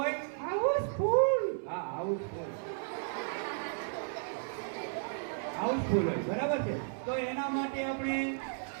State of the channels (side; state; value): left; silent; 55 dB below the other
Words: હાઉસફુલ. હા, હાઉસફુલ. હાઉસફુલ હોય, બરાબર છે. તો એના માટે આપણે